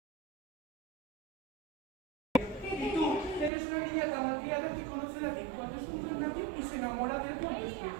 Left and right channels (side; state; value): left; drops out; at 3.5 s